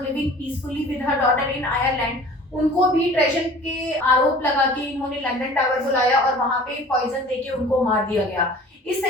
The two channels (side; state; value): both; normal; correlation 0.46